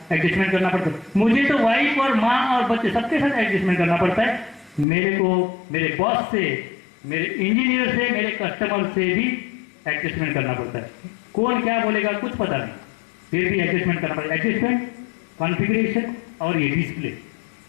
एडजस्टमेंट करना पड़ता है। मुझे तो वाइफ और माँ और बच्चे सबके साथ एडजस्टमेंट करना पड़ता है। मेरे को मेरे बॉस से, मेरे इंजीनियर से, मेरे कस्टमर से भी एडजस्टमेंट करना पड़ता है। कौन क्या बोलेगा कुछ पता नहीं, फिर भी एडजस्टमेंट करना पड़ता है। एडजस्टमेंट, कॉन्फ़िगरेशन और ये डिस्प्ले,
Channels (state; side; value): drops out; right; at 4.9 s